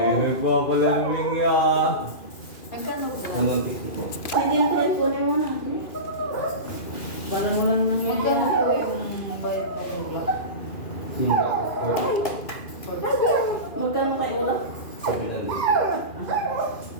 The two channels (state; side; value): late; right; 2.4 ms